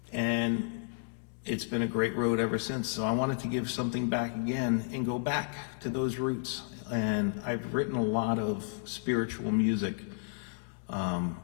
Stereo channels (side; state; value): right; silent; digital silence